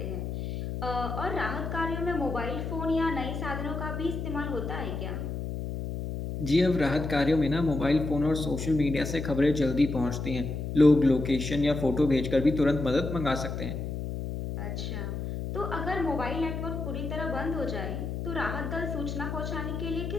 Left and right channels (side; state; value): left; noise; hum, 5 dB below the sound